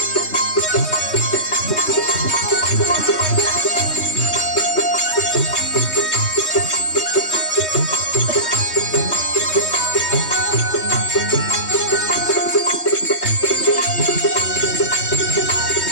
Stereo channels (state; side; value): late; right; 3.2 ms